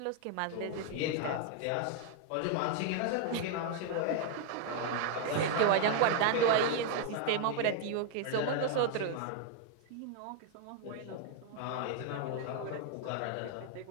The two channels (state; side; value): different; both; correlation 0.00